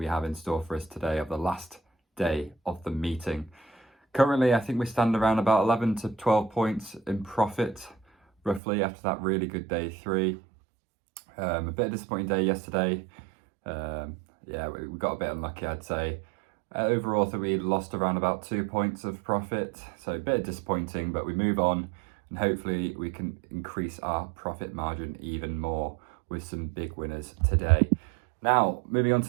have in store for us today, of the last day of the meeting. Currently I think we stand around about 11 to 12 points in profit roughly after that really good day 3. A bit of a disappointing day yesterday. Yeah, we got a bit unlucky, I'd say. Overall I think we lost around about 2 points of profit, so a bit disappointing, but we move on. And hopefully we can increase our profit margin even more with some big winners today. Now, moving on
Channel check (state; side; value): drops out; left; at 8.6 s